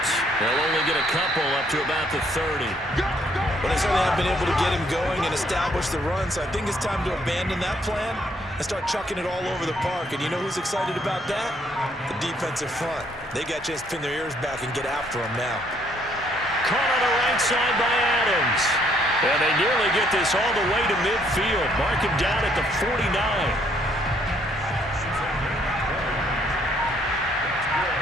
They'll only get a couple up to about the 30. But they certainly have been able to get him going and establish the run, so I think it's time to abandon that plan and start chucking it all over the park. And you know who's excited about that? The defensive front. They got a chance to pin their ears back and get after him now. Caught on the right side by Adams. And they nearly get this all the way to midfield. Mark him down at the 49.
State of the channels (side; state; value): both; normal; correlation 0.67